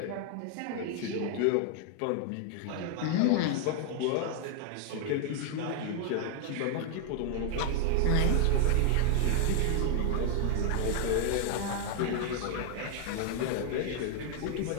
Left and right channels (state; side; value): different; both; correlation 0.00